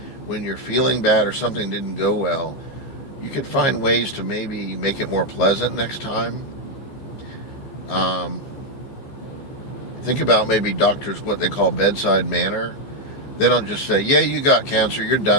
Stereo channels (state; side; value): late; right; 15 ms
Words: when you're feeling bad or something didn't go well, you could find ways to maybe make it more pleasant next time. Think about maybe doctors, what they call bedside manner. They don't just say, yeah, you got cancer, you're